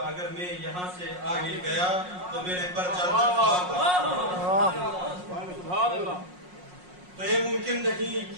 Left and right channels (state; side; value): late; left; 5.5 ms